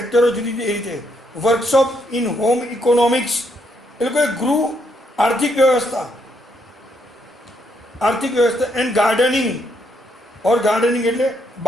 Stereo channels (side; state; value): both; normal; correlation 0.75